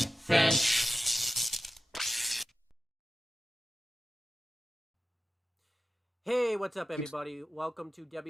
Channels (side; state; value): both; normal; correlation 0.94